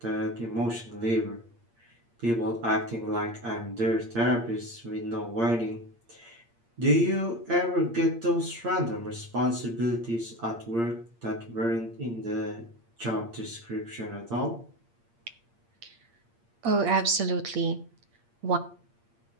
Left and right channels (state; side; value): late; left; 8.6 ms